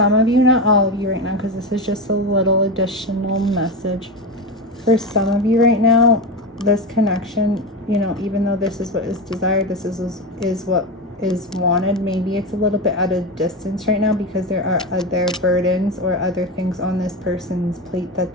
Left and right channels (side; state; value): both; normal; correlation 0.19